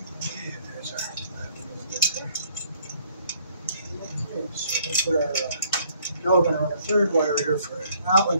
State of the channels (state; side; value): inverted; both; correlation -0.63